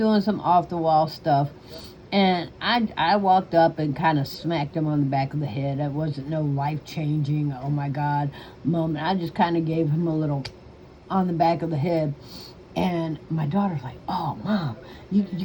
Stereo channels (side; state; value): both; identical; correlation 1.00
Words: some off the wall stuff. And I walked up and kind of smacked him on the back of the head. It wasn't no life changing, oh my God moment. I just kind of gave him a little on the back of the head. And my daughter's like, "Oh, Mom, you